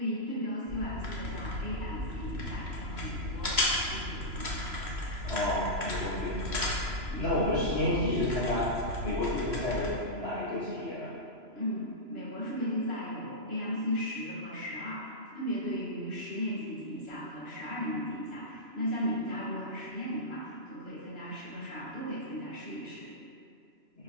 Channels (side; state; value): left; late; 3.0 ms